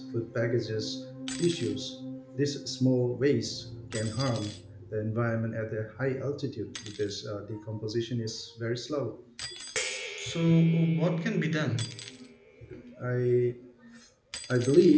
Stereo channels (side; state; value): both; identical; correlation 1.00